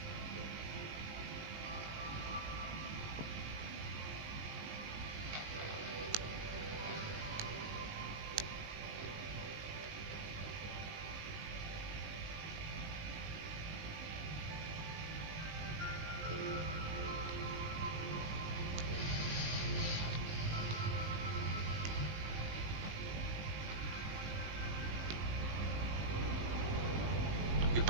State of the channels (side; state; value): left; late; 19 ms